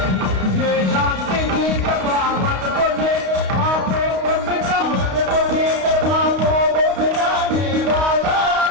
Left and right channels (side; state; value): left; late; 32 ms